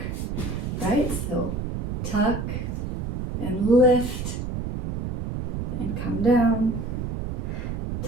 right? So tuck and lift and come down.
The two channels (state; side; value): noise; right; rumble, 3 dB below the sound